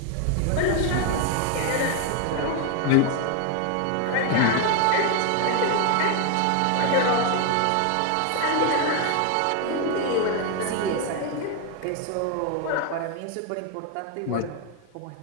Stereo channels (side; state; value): both; different; correlation 0.01